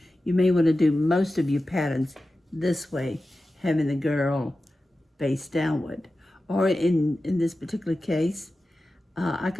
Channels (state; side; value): normal; both; correlation 0.94